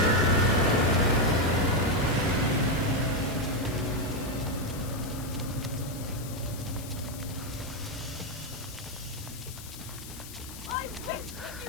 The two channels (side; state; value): left; noise; hiss, 14 dB below the sound